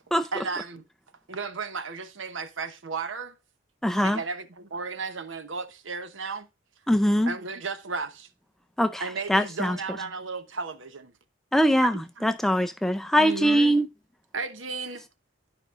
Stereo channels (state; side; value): normal; both; correlation 0.78